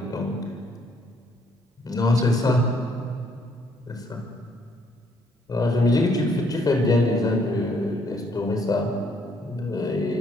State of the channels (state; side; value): normal; both; correlation 0.68